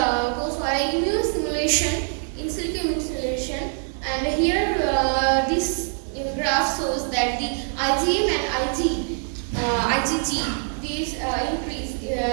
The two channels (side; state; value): left; silent; 63 dB below the other